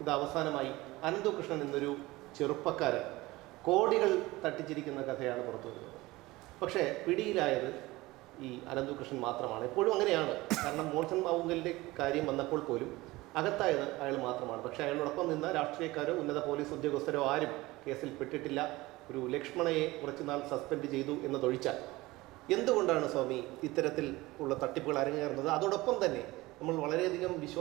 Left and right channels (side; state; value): left; quieter; 20.0 dB